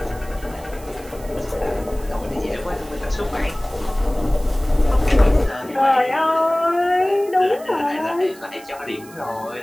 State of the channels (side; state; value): right; noise; hiss, 21 dB below the sound